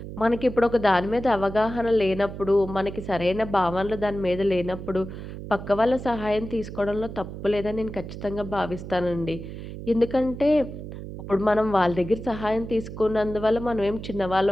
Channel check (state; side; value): noise; right; hum, 10 dB below the sound